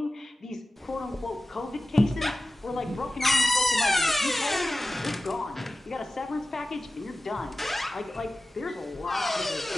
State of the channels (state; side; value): normal; both; correlation 0.96